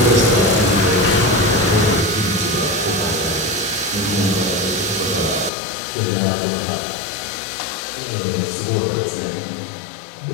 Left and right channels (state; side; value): drops out; right; at 5.5 s